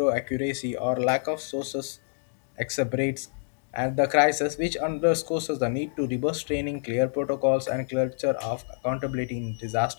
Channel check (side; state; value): right; silent; digital silence